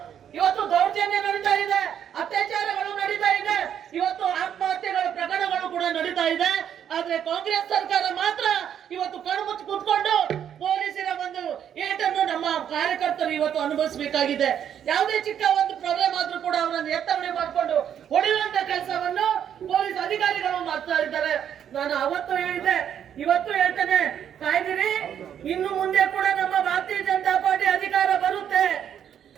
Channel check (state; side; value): quieter; left; 9.2 dB